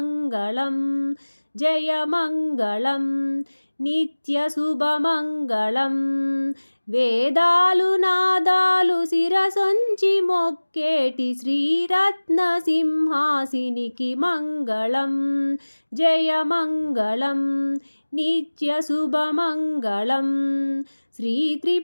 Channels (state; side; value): inverted; both; correlation -1.00